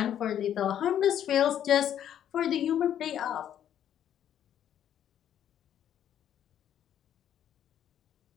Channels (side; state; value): right; quieter; 10.2 dB